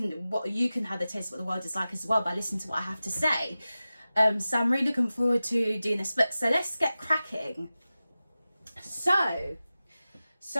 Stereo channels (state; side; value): inverted; both; correlation -0.95